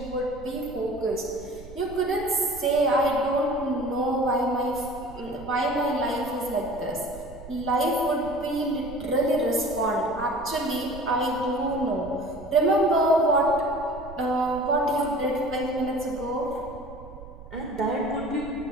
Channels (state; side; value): noise; right; rumble, 16 dB below the sound